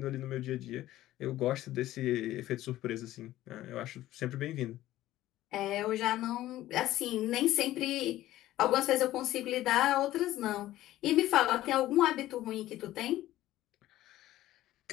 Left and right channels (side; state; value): right; quieter; 14.9 dB